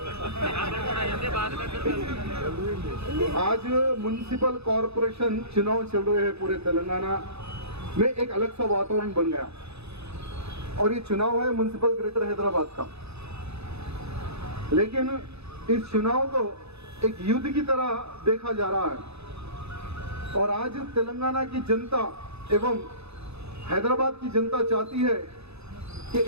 आज म्युनिसिपल कॉरपोरेशन चुनाव चल रहे हैं पूरे तेलंगाना में. एक अलग सा वातावरण बन गया और ये चुनाव है म्युनिसिपल ग्रेटर हैदराबाद का. लेकिन इस चुनाव को एक युद्ध की तरह देखा जा रहा है और आज तेलंगाना की जनता एवं हैदराबाद की जनता चाहती है कि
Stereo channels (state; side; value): late; left; 0.79 ms